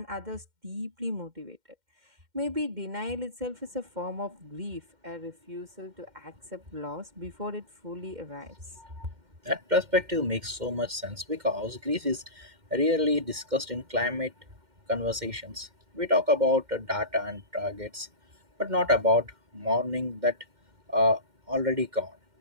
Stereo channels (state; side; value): late; left; 2.1 ms